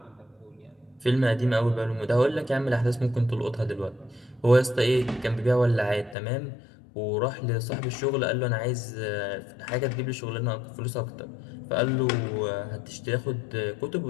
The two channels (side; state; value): right; drops out; at 6.2 s